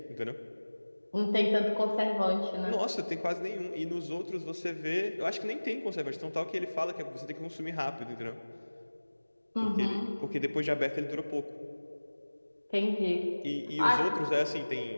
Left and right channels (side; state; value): both; inverted; correlation -1.00